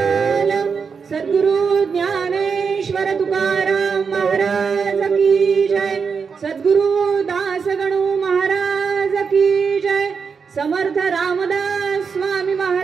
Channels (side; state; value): left; quieter; 5.8 dB